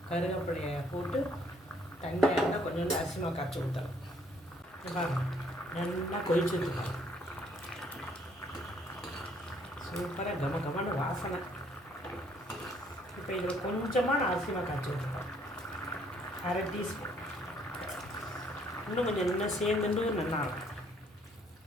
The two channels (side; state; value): both; normal; correlation 0.65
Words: கருவேப்பிலையை போட்டு தண்ணியாக இருந்தால் கொஞ்சோண்டு அரிசி மாவு கரைச்சி ஊற்றலாம். நல்லா கொதிச்சுருக்கோம். சூப்பராக கமன்னு வாசனை. இப்போ இதில் கொஞ்சமாக நான் அரிசி மாவு காய்ச்சி வச்சுருக்கேன். 1/2 டீஸ்பூன். இன்னும் கொஞ்சம் நல்லா சேர்ந்துட்டு நல்லா இருக்கும்.